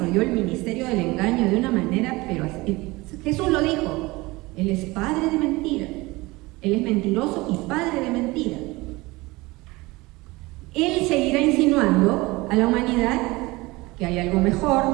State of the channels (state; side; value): quieter; left; 21.9 dB